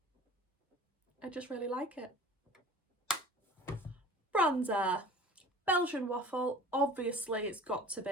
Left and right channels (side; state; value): both; normal; correlation 0.43